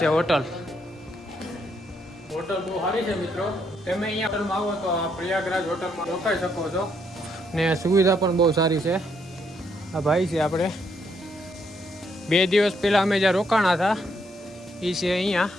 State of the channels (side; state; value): both; normal; correlation 0.74